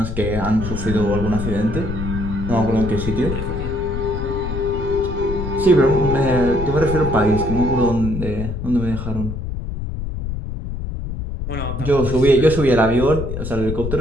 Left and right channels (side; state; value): left; noise; rumble, 5 dB below the sound